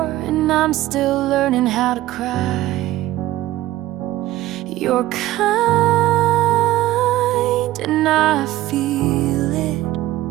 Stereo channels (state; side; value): quieter; left; 15.7 dB